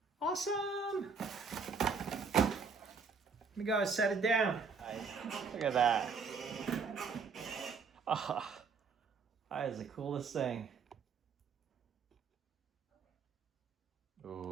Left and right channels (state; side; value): quieter; left; 5.2 dB